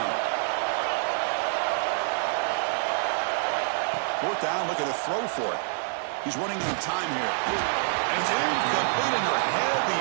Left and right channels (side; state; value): left; silent; 60 dB below the other